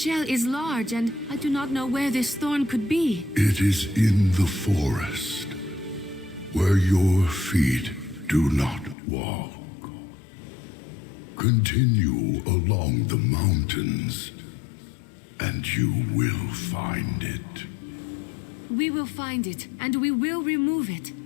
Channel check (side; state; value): right; drops out; at 9.0 s